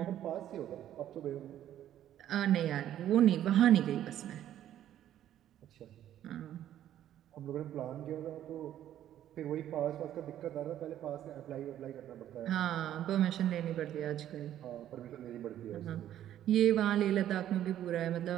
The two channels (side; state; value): left; quieter; 11.6 dB